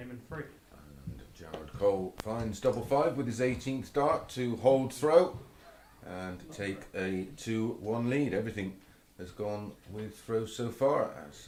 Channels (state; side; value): identical; both; correlation 1.00